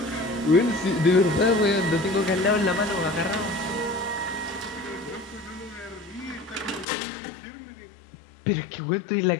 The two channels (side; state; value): right; drops out; at 6.9 s